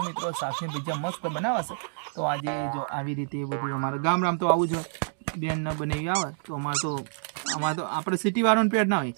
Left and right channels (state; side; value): silent; left; digital silence